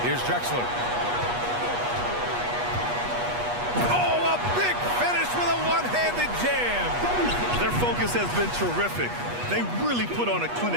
Here's Drexler. Oh, a big finish with a one-handed jam. Their focus has been terrific. They really put on a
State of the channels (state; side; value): late; left; 8.3 ms